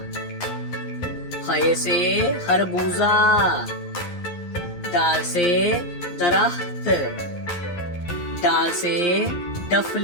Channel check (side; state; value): right; late; 11 ms